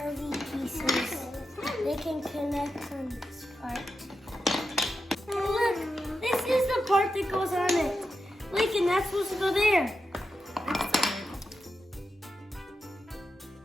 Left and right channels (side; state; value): both; normal; correlation 0.88